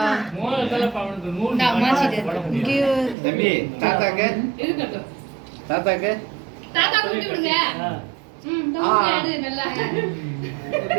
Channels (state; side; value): drops out; left; at 3.2 s